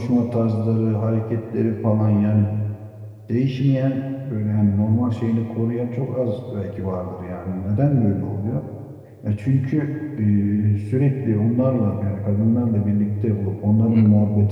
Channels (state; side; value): identical; both; correlation 1.00